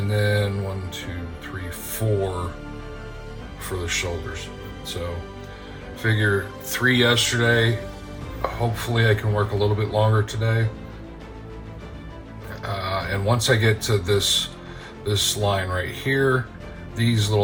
then 1, 2, 3, 4 for the shoulders. So figure 3 yesterday. Hopefully I can work a little bit longer today. And once I get to this line right here, these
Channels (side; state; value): both; identical; correlation 1.00